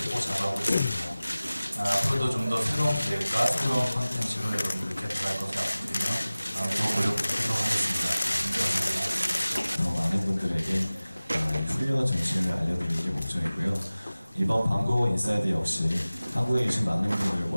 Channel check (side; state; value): both; inverted; correlation -0.98